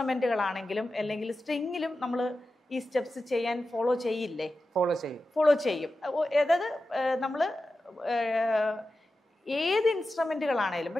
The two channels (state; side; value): normal; both; correlation 0.92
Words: അല്ലെങ്കിൽ സ്ട്രിങ്ങിലും നമ്മൾ ഈ സ്റ്റെപ്സ് ചെയ്യാൻ ഫോളോ ചെയ്യില്ലേ? ഫോളോ ചെയ്യും. അതായത് നമ്മൾ ഏത് ഇൻസ്ട്രുമെൻറ്റുകളാണേലും,